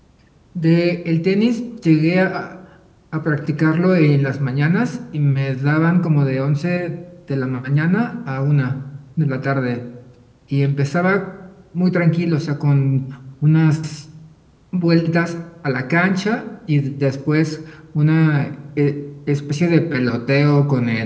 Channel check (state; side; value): identical; both; correlation 1.00